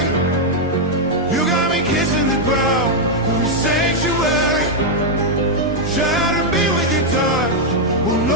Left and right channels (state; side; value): normal; both; correlation -0.01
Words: You got me kissing the ground of a sanctuary, trying to be with your touch. Oh